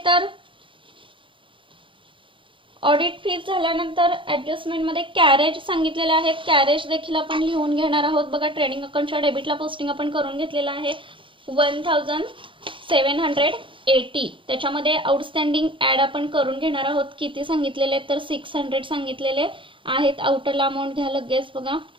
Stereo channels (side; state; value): left; late; 0.25 ms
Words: तर ऑडिट फीज झाल्यानंतर ऍडजस्टमेंट मध्ये कॅरेज सांगितलेले आहेत. कॅरेज देखील आपण लिहून घेणार आहोत. बघा ट्रेडिंग अकाउंटच्या डेबिटला पोस्टिंग आपण करून घेतलेलं आहे 1780. त्याच्यामध्ये आउटस्टँडिंग ऍड आपण करून घेणार आहोत. किती सांगितलेले तर 600 सांगितलेले आहेत. आउटरला अमाऊंट घ्या लगेच. बघा